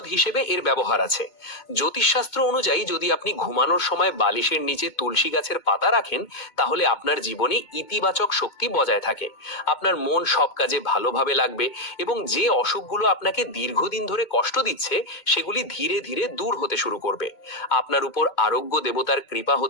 হিসেবে এর ব্যবহার আছে। জ্যোতিষশাস্ত্র অনুযায়ী যদি আপনি ঘুমানোর সময় বালিশের নিচে তুলসী গাছের পাতা রাখেন তাহলে আপনার জীবনে ইতিবাচক শক্তি বজায় থাকে। আপনার মন সব কাজে ভালোভাবে লাগবে এবং যে অসুখগুলো আপনাকে দীর্ঘদিন ধরে কষ্ট দিচ্ছে সেগুলি ধীরে ধীরে দূর হতে শুরু করবে। আপনার উপর আরোগ্য দেবতার কৃপা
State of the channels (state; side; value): late; right; 2.2 ms